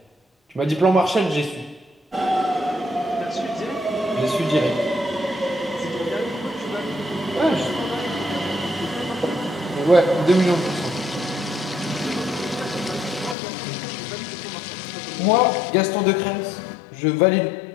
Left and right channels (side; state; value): right; drops out; at 13.4 s